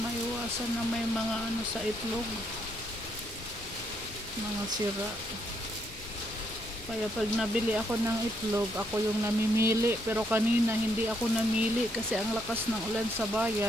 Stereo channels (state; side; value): noise; left; rumble, 17 dB below the sound